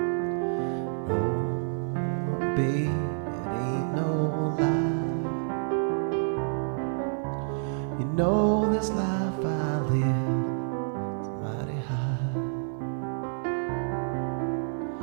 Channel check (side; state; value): left; silent; 56 dB below the other